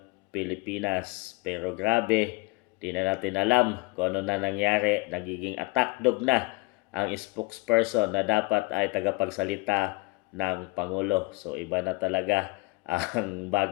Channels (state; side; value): quieter; right; 23.7 dB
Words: Pilipinas. Pero grabe, di na natin alam kung ano na nangyari. Nagiging attack dog na ang spokesperson na dapat ay tagapagsalita ng Pangulo. So iba na talaga ang